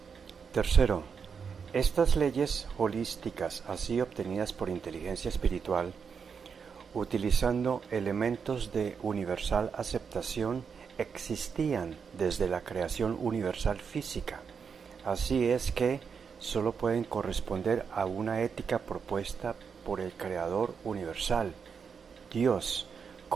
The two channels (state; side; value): quieter; left; 6.2 dB